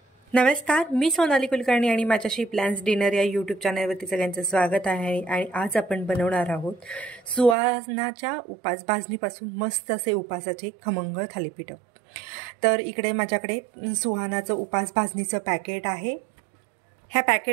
नमस्कार, मी सोनाली कुलकर्णी आणि माझ्याशी प्लॅन्स डिनर या यूट्यूब चॅनलवरती सगळ्यांचं स्वागत आहे। आणि आज आपण बनवणार आहोत सुहानाच्या उपास भाजणीपासून मस्त असे उपासाचे खमंग थालीपीठ। तर इकडे माझ्याकडे सुहानाचं उपास भाजणीचं पॅकेट आहे। ह्या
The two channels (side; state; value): left; drops out; at 7.6 s